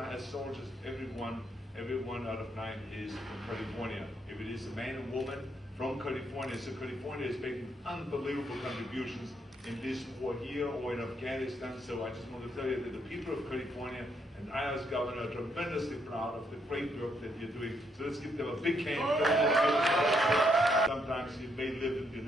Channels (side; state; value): both; normal; correlation 0.75